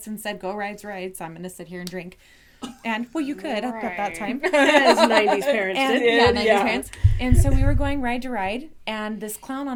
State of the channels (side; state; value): both; identical; correlation 1.00